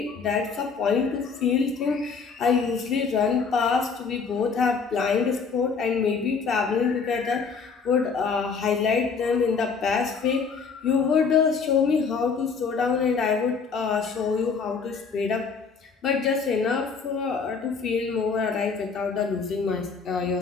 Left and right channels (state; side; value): quieter; right; 5.3 dB